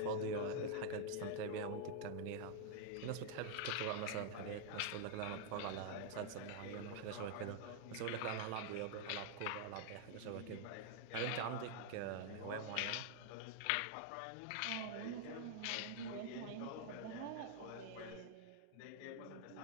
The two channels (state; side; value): different; both; correlation 0.00